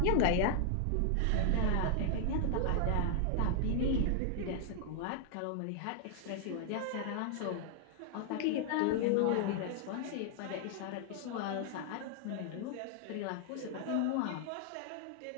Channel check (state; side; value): different; both; correlation 0.00